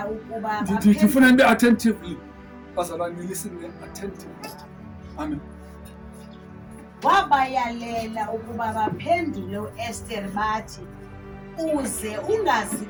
ukuba Ndifuna nibe attentively. Bazalwane listen attentively. Amen. Wabayalela ukuba baphendule uEsther bathi uze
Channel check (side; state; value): both; identical; correlation 1.00